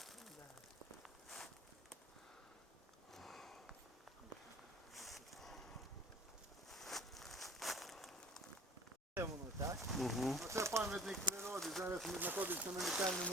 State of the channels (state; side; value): normal; both; correlation 0.48